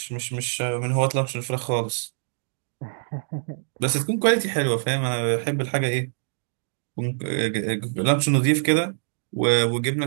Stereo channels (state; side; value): silent; left; digital silence